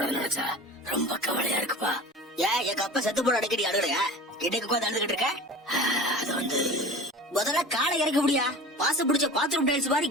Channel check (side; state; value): both; normal; correlation 0.37